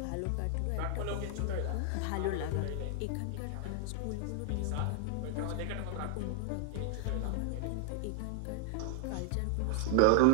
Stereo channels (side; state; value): both; different; correlation 0.00